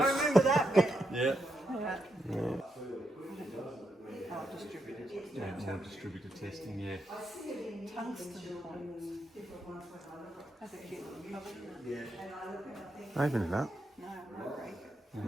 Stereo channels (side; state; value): both; normal; correlation 0.82